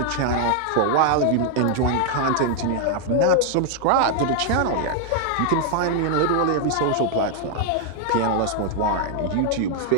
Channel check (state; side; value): different; both; correlation 0.00